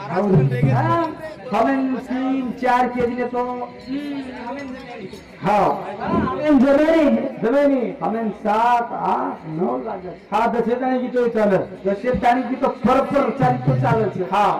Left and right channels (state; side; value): identical; both; correlation 1.00